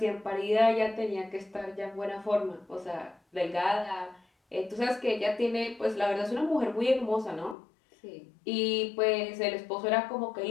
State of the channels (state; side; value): drops out; right; at 7.6 s